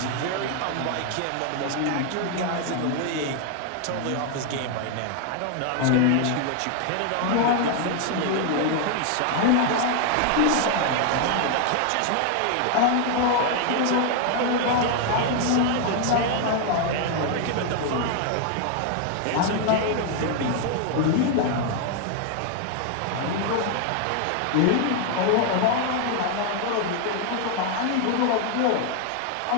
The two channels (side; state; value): both; different; correlation 0.00